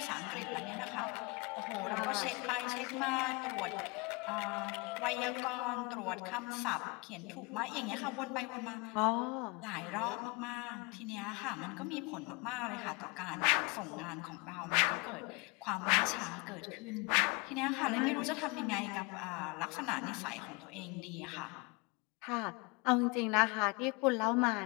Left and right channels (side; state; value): right; quieter; 27.6 dB